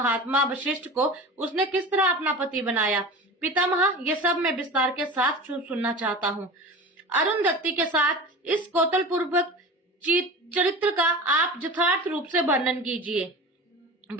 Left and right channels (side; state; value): both; normal; correlation 0.33